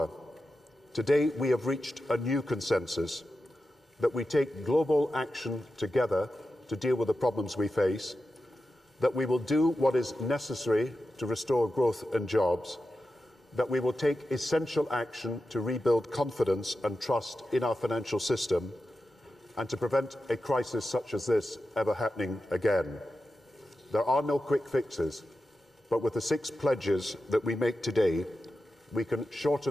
Today we have reached a new consensus that we take global action together to deal with the problems we face, that we will do what is necessary to restore growth and jobs, that we will take essential action to rebuild confidence and trust in our financial system, and to prevent a crisis such as this ever happening again. There are no quick fixes, but with the 6 pledges that we make today, we can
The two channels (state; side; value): normal; both; correlation 0.91